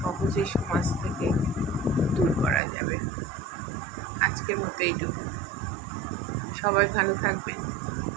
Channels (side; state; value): left; drops out; at 2.6 s